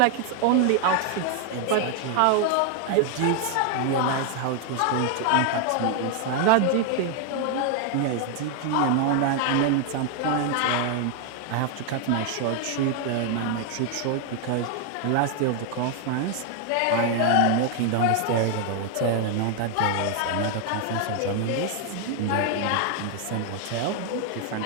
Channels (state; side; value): different; both; correlation 0.00